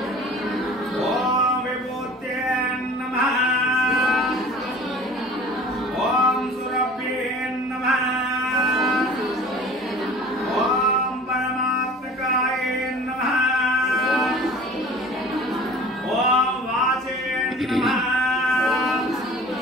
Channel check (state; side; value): normal; both; correlation 0.44